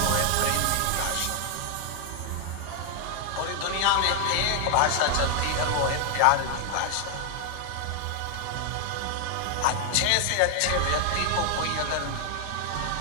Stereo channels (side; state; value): both; different; correlation 0.00